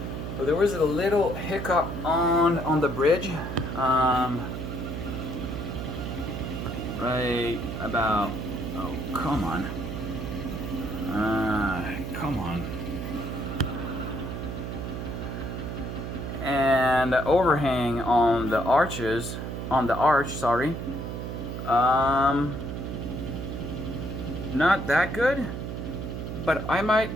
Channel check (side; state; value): right; noise; hum, 5 dB below the sound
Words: So there was a little hiccup on the bridge. Right about, oh, come on. Come on. And the overhang on the arches, on the arch, sorry. Not that good, but I might